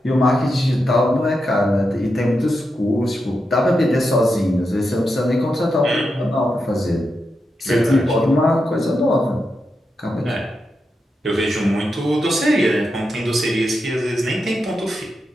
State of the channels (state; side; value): normal; both; correlation 0.87